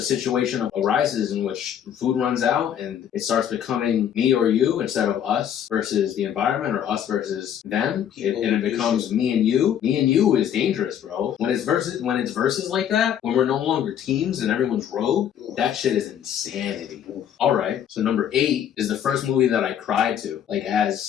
situation arises in which food runs out and it starts becoming me or you instead of us versus the environment or us versus them, and it becomes me and you. Me and you is dangerous, bro. When it's versus like that, when we're no longer teams and everyone's rogue, that shit is insanity. All right. So number 8 is the first movie that I cried to, like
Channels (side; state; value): right; quieter; 9.4 dB